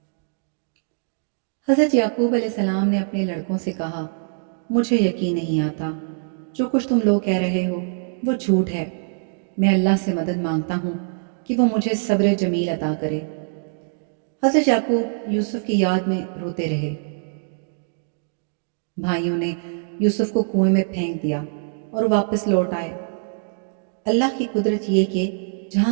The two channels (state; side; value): silent; left; digital silence